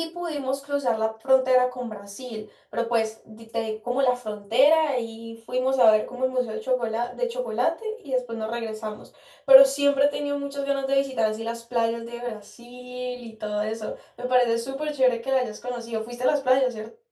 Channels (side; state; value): both; identical; correlation 1.00